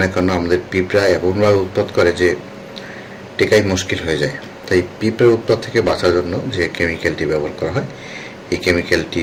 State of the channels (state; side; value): identical; both; correlation 1.00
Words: না কেন আমাদের পিঁপড়া এমনভাবে উৎপাত করে যে টেকাই মুশকিল হয়ে যায়। তাই পিঁপড়ার উৎপাত থেকে বাঁচার জন্য যে কেমিক্যালটি ব্যবহার করা হয় এই কেমিক্যালটি